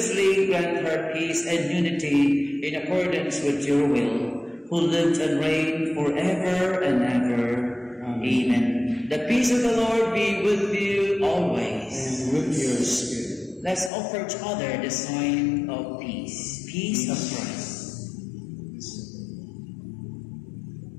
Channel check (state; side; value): drops out; right; at 13.9 s